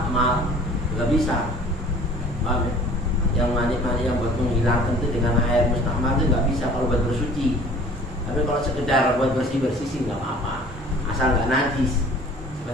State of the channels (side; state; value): both; normal; correlation 0.49